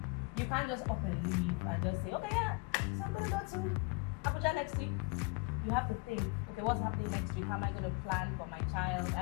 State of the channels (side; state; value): right; quieter; 28.3 dB